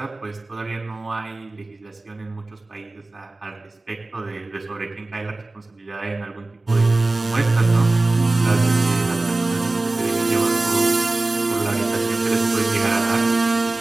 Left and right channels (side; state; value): left; quieter; 3.1 dB